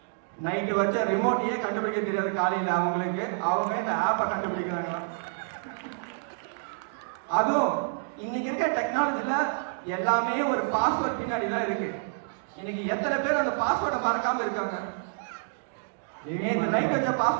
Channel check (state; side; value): silent; left; digital silence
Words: நைட்டு வச்ச ரிமோட்டையே கண்டுபிடிக்க தெரியாது காலையில அவங்களுக்கு, அவங்க இந்த ஆப்பை கண்டுபிடிக்கிறாங்களாம். அதுவும் இன்னைக்கு இருக்க டெக்னாலஜில எல்லாமே ஒரு பாஸ்வேர்ட் பின்னாடி தான் இருக்கு. இன்னைக்கு எத்தனை பேர் அந்த பாஸ்வேர்டை மறக்காம இருக்காங்க? நேற்று நைட் வச்ச